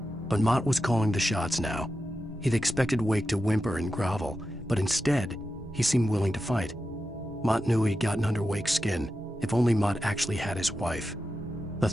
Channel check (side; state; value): both; normal; correlation 0.90